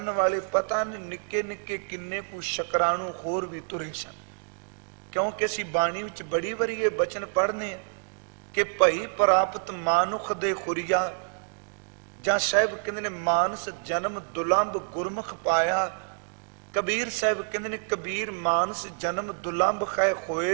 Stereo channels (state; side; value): silent; left; digital silence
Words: ਵਾਲੇ ਪਤਾ ਨਹੀਂ ਨਿੱਕੇ ਨਿੱਕੇ ਕਿੰਨੇ ਕੁ ਸ਼ੁਕਰਾਣੂ ਹੋਰ ਵੀ ਤੁਰੇ ਸਨ। ਕਿਉਂਕਿ ਅਸੀਂ ਬਾਣੀ ਵਿੱਚ ਬੜੀ ਵਾਰੀ ਇਹ ਬਚਨ ਪੜ੍ਹਨੇ ਆ ਕਿ ਭਈ ਪ੍ਰਾਪਤ ਮਾਨੁਖ ਦੇ ਖੁਰੀਆ, ਜਾਂ ਸਾਹਿਬ ਕਹਿੰਦੇ ਨੇ ਮਾਨਸ ਜਨਮ ਦੁਲੰਭ ਗੁਰਮੁਖ ਪਾਇਆ। ਕਬੀਰ ਸਾਹਿਬ ਕਹਿੰਦੇ ਨੇ ਕਬੀਰ ਮਾਨਸ ਜਨਮ ਦੁਲੰਭ ਖੈ